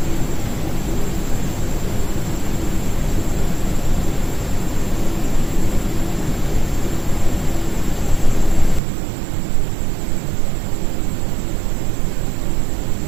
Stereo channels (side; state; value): left; drops out; at 8.8 s